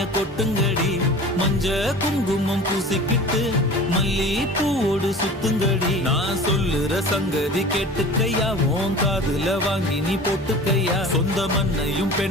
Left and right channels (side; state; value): both; normal; correlation 0.39